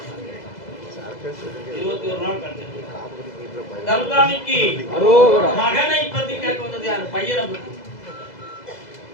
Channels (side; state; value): right; late; 2.0 ms